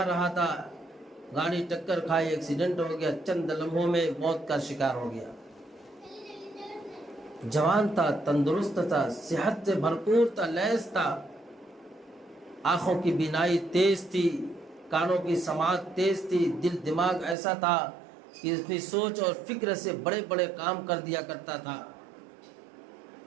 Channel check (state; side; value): drops out; left; at 17.4 s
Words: رہا تھا، گاڑی ٹکر کھائی، ایکسیڈنٹ ہو گیا، چند لمحوں میں موت کا شکار ہو گیا۔ جوان تھا، تندرست تھا، صحت سے بھرپور تھا، لیس تھا، آنکھوں کی بینائی تیز تھی، کانوں کی سماعت تیز تھی، دل دماغ ایسا تھا کہ اپنی سوچ اور فکر سے بڑے بڑے کام کر دیا کرتا تھا،